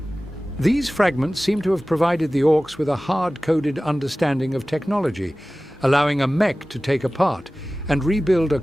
These fragments seem to have provided the orcs with a hard-coded understanding of technology, allowing a mech to take apart and rebuild a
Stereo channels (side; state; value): both; normal; correlation 0.97